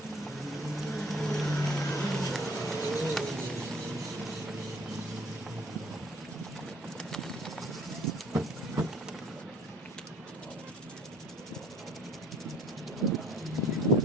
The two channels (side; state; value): both; normal; correlation 0.55